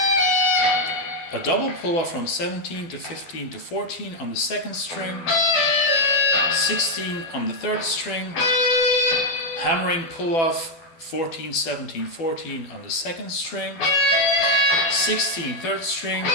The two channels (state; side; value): late; right; 12 ms